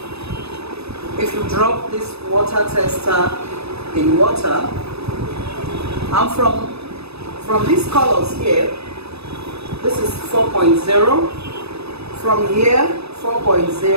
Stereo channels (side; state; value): left; late; 0.79 ms